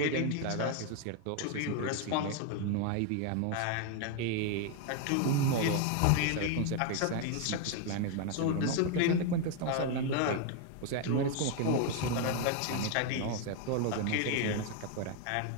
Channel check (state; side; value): different; both; correlation 0.01